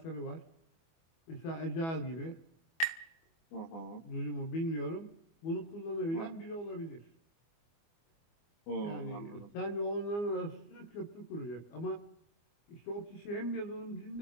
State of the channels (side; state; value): right; late; 24 ms